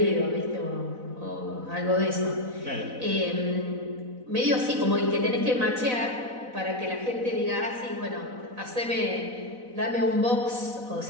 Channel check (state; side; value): late; left; 4.0 ms